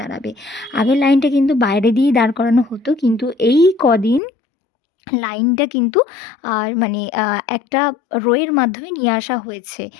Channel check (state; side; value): drops out; right; at 4.2 s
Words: আগের লাইনটা কিন্তু বাইরে দিয়েই দাঁড় করানো হতো, কিন্তু এই কদিন লাইনটা কিন্তু মানে একটা রোয়ের মাধ্যমে নিয়ে আসা হয়েছে।